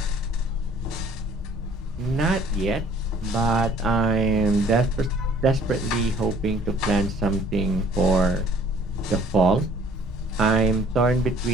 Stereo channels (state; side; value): normal; both; correlation 0.55